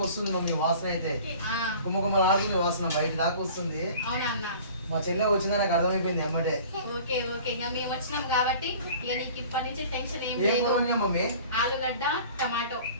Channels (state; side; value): inverted; both; correlation -0.45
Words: వస్తుంది మమ్మీ, వాసన అయితే కుమ్మకుమ్మ రాజుంది, వాసన బయట దాకా వస్తుంది. అవునా అన్న? మా చెల్లె వచ్చిందని నాకు అర్థమైపోయింది అమ్మటే. ఓకే ఓకే, ఇంకా మేము వచ్చినాం కాబట్టి ఇక నీకు ఇప్పటి నుంచి టెన్షన్ ఏం లేదు. మమ్మీ ఆలుగడ్డ టమాటో